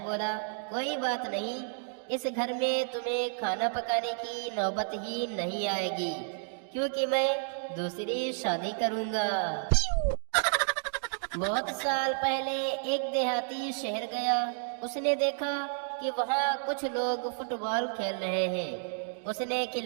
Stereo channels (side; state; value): left; silent; digital silence